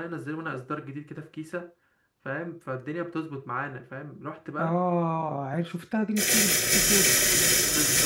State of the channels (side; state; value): both; identical; correlation 1.00